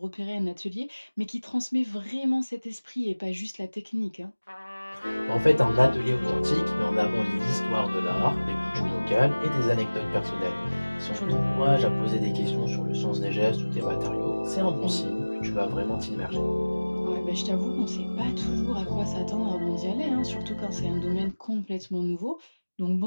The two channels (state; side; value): inverted; both; correlation -1.00